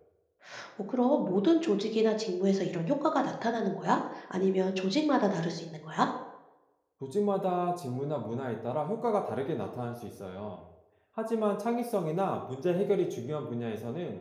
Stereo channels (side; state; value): both; identical; correlation 1.00